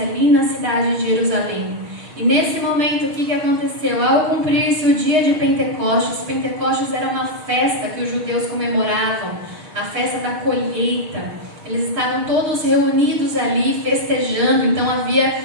ali na cidade de Jerusalém. E nesse momento, o que aconteceu? Ao cumprir-se o dia de Pentecostes, Pentecostes era uma festa que os judeus comemoravam, a festa da colheita. Eles estavam todos reunidos ali, festejando. Então havia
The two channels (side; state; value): left; late; 6.4 ms